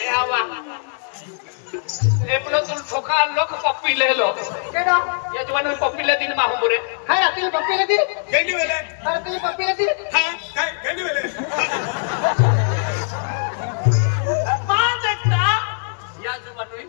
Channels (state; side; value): silent; right; digital silence